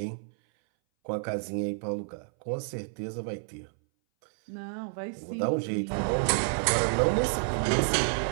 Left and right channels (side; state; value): left; silent; 58 dB below the other